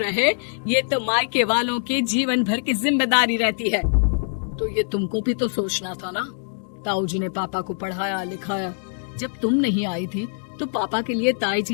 रहे, ये तो मायके वालों की जीवन भर की जिम्मेदारी रहती है। तो ये तुमको भी तो सोचना था ना। ताऊ जी ने पापा को पढ़ाया लिखाया, जब तुम नहीं आई थी तो पापा के लिए ताई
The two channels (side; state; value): right; silent; digital silence